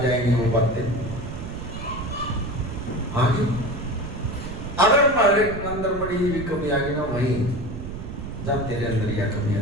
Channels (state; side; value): noise; right; rumble, 8 dB below the sound